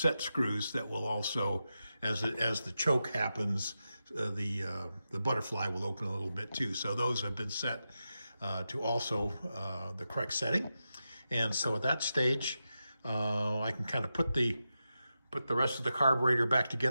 screws that will also, as the choke happens, the butterfly will open a little bit too. So those have been set to also the correct setting. And so at that stage, I can kind of put the rest of the carburetor back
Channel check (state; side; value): inverted; both; correlation -0.90